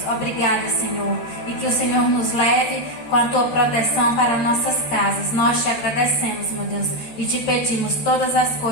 Obrigada, Senhor. E que o Senhor nos leve com a Tua proteção para nossas casas. Nós te agradecemos, meu Deus, e te pedimos todas as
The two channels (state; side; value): late; right; 13 ms